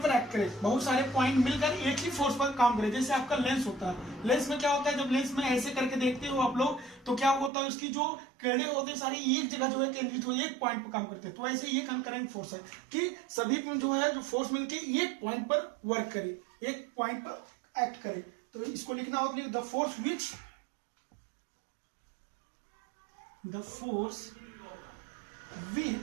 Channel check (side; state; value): left; drops out; at 7.5 s